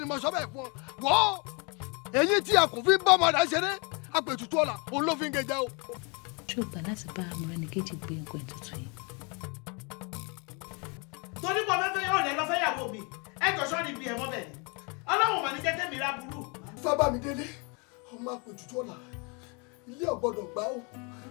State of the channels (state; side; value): quieter; right; 32.3 dB